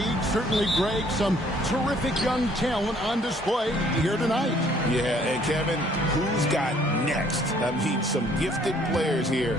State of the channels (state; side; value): normal; both; correlation 0.61